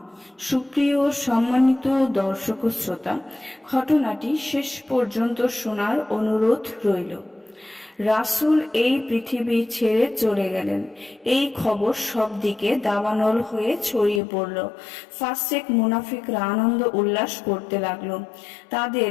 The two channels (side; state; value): right; drops out; at 14.2 s